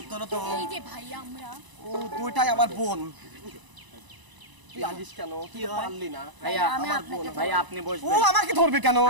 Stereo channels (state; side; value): late; left; 1.0 ms